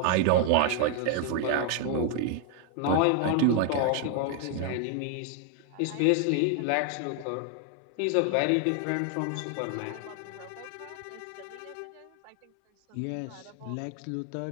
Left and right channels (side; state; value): both; different; correlation 0.00